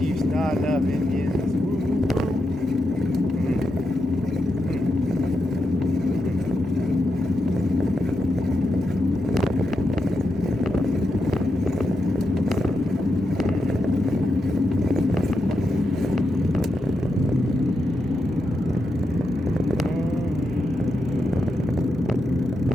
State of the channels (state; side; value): normal; both; correlation 0.86